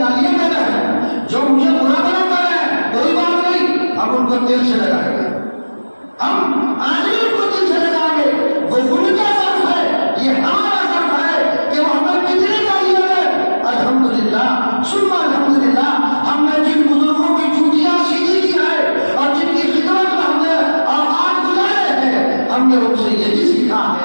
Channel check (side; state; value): both; inverted; correlation -1.00